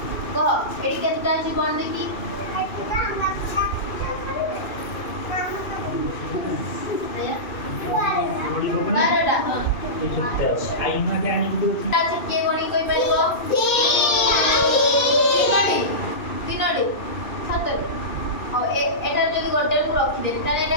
কহ এডি কেতটা আছে কোন দেখি बारह आईना के आनी दो आज के गणी कोई पाइबो तीनोडी सतरे और एटा जदी गोटे को रखि दे ताले एटा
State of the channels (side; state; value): right; late; 2.6 ms